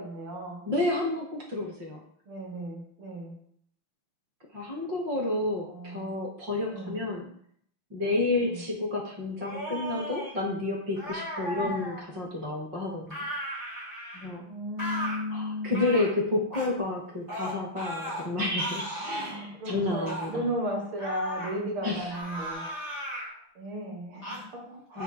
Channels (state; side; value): late; left; 5.9 ms